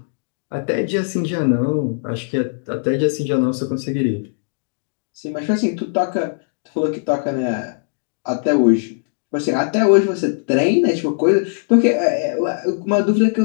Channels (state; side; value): silent; right; digital silence